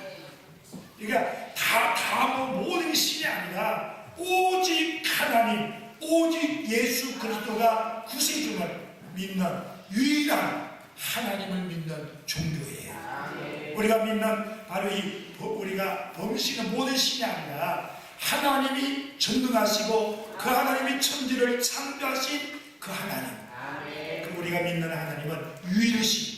그러니까 모든 신이 아니라 오직 하나님, 오직 예수 그리스도가 구세주를 믿는 유일한 하나님을 믿는 종교예요. 우리가 믿는 바로 우리가 범신은 모든 신이 아니라 하나님이 전능하시고 그 하나님이 천지를 창조하신 그 하나님. 그리고 우리가 믿는 하나님은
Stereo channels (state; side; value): identical; both; correlation 1.00